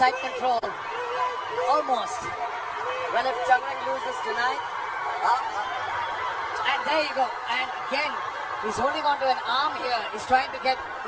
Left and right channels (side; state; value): both; identical; correlation 1.00